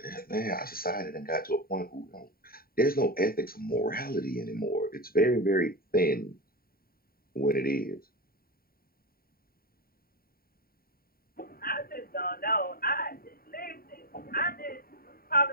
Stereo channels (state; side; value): late; right; 0.43 ms